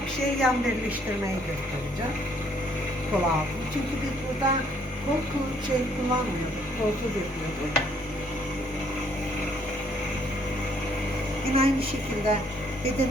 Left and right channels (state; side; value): normal; both; correlation 0.65